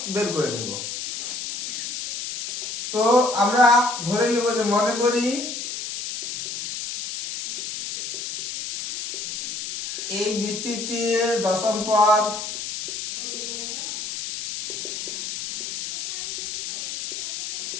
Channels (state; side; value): noise; left; hiss, 6 dB below the sound